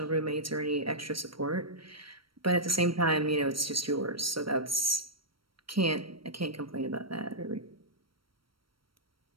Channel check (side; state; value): left; late; 0.74 ms